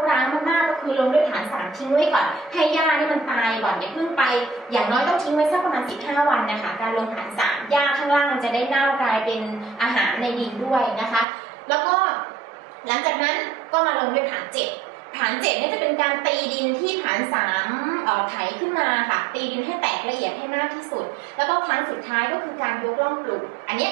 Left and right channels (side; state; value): left; drops out; at 11.2 s